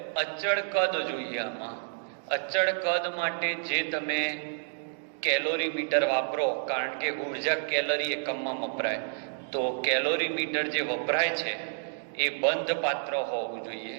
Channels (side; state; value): left; silent; digital silence